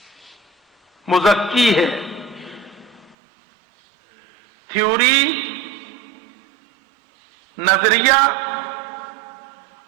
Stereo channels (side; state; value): left; drops out; at 3.2 s